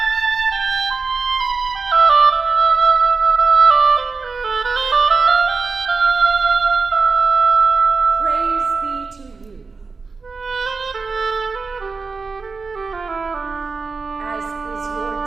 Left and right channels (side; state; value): left; quieter; 4.5 dB